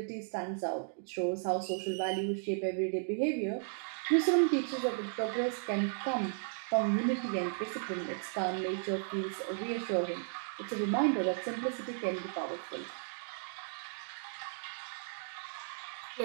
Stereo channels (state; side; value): silent; left; digital silence